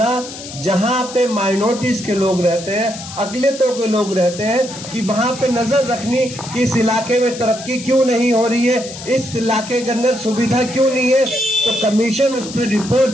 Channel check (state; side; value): noise; left; hiss, 12 dB below the sound